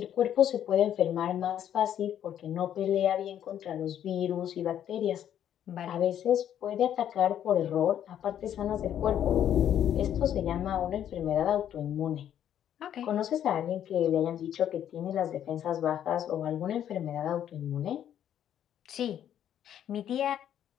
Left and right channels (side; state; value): right; quieter; 10.3 dB